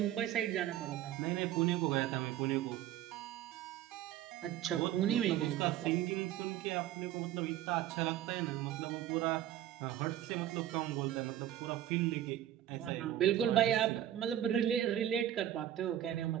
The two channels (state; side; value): quieter; left; 12.1 dB